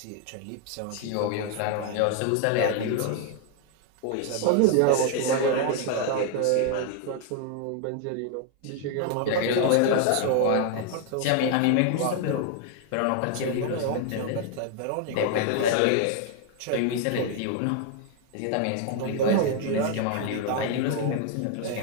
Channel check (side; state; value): both; different; correlation 0.00